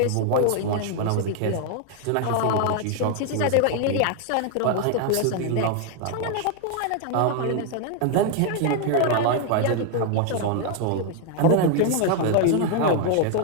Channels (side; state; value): both; different; correlation 0.00